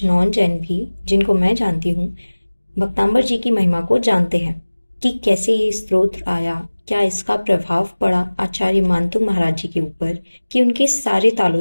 नॉन जैन भी जिनको मैं जानती हूँ, भक्तांबर जी की महिमा को जानते हैं कि कैसे ये स्तोत्र आया, क्या इसका प्रभाव पड़ा आचार्य मानतुंग महाराज जी के ऊपर कि उनके सारे तालों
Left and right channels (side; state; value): both; inverted; correlation -1.00